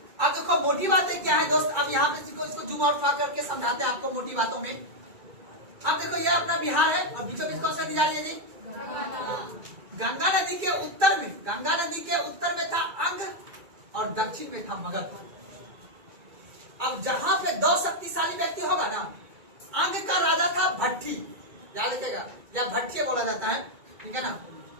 अब देखो मोटी बातें क्या है दोस्त। अब यहाँ पे इसको जूम आउट करके समझाते हैं आपको मोटी बातों में। अब देखो ये अपना बिहार है और बीचों बीच कौन सा नदी जा रही है जी? गंगा नदी के उत्तर में, गंगा नदी के उत्तर में था अंग और दक्षिण में था मगध। अब जहां पे दो शक्तिशाली व्यक्ति होगा ना, अंग का राजा था भट्टी, याद रखिएगा, या भट्टी बोला जाता है, ठीक है ना।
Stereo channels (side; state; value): left; late; 2.3 ms